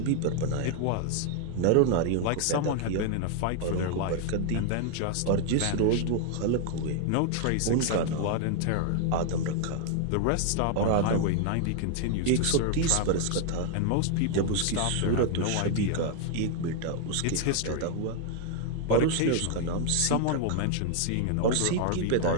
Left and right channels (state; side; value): different; both; correlation 0.00